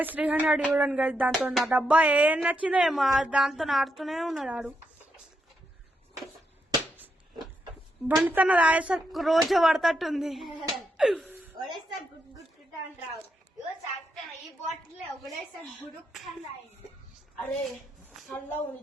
300 చూడండి గైస్. దాంతో నా డబ్బా ఏం నచ్చిందో ఏమో దాంతో ఆడుతూనే ఉన్నాడు ఆడు. బండితన రాయేసరికి రోజు పడతట్టుంది. ఒకడేసారి గుడ్ గుడ్ గుడ్ అని రావు. ఇగో చాక్తాను ఈ బాటిల్ ఒకడేసారి గుడుక్ అని రాయింది. అరే చల్లగా ఉంది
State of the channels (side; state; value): both; normal; correlation 0.82